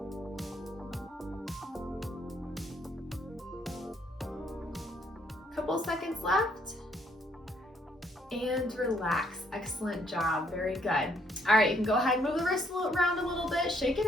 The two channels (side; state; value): both; normal; correlation 0.69